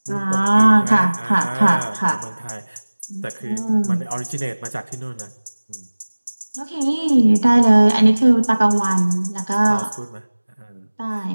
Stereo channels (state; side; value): inverted; both; correlation -1.00